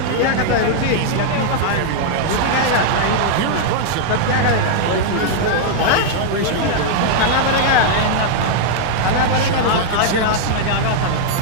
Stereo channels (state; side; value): different; both; correlation -0.01